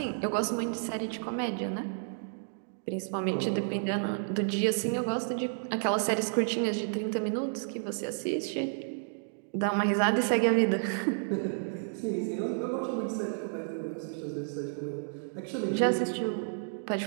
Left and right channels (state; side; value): silent; left; digital silence